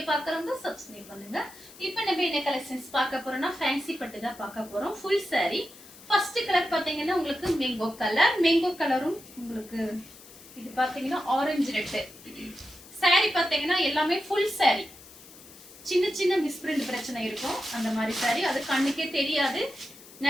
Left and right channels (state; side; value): noise; left; hiss, 20 dB below the sound